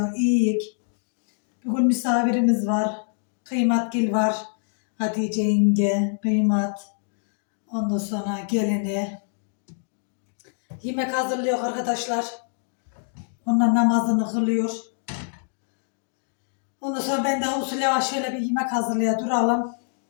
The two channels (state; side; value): silent; right; digital silence